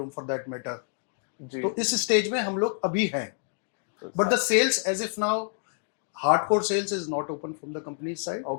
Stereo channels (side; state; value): right; silent; digital silence